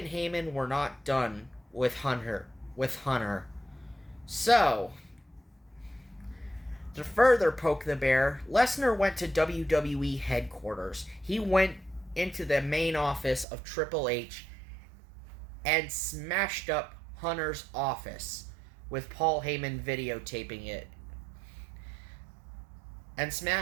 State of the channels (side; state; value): left; drops out; at 13.5 s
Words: Heyman were not done with Hunter. So, to further poke the bear, Lesnar went to WWE headquarters. He went into the main office of Triple H and smashed up Hunter's office, with Paul Heyman videotaping it, and